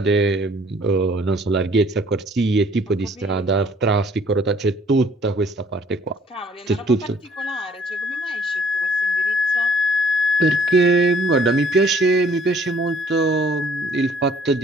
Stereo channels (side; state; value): both; normal; correlation 0.59